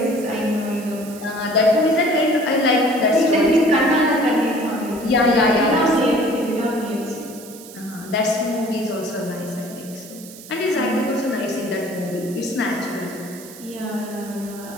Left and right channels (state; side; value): noise; right; hiss, 17 dB below the sound